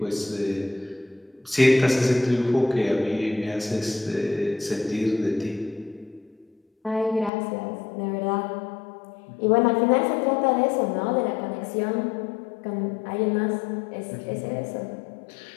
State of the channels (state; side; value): drops out; right; at 7.3 s